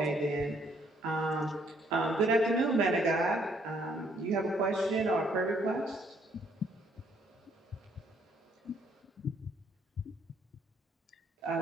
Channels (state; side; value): normal; both; correlation 0.67